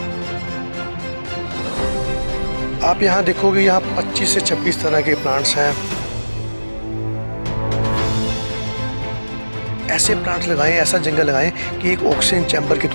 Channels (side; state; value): both; inverted; correlation -1.00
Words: आप यहाँ देखोगे, यहाँ 25 से 26 तरह के प्लांट्स हैं। ऐसे प्लांट्स लगाएं, ऐसा जंगल लगाएं कि एक ऑक्सीजन चैम्बर के